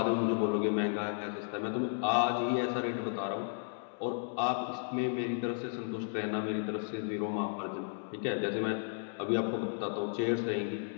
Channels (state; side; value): silent; right; digital silence